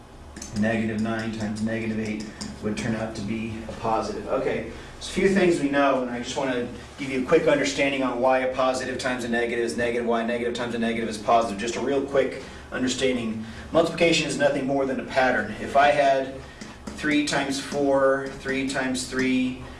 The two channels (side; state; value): both; identical; correlation 1.00